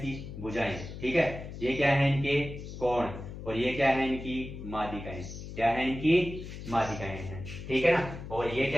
भुजाएं। ठीक है, ये क्या है? इनके कोण। और ये क्या है? इनकी माध्यिकाएं। क्या है? इनकी माध्यिकाएं हैं। ठीक है ना, और ये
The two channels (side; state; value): left; noise; hum, 10 dB below the sound